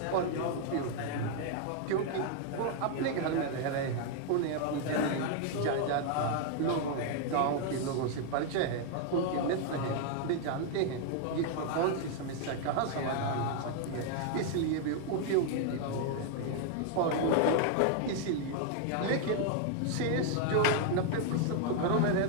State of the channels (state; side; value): different; both; correlation 0.00